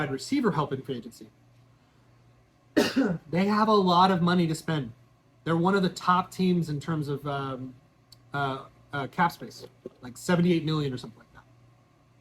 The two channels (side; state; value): both; identical; correlation 1.00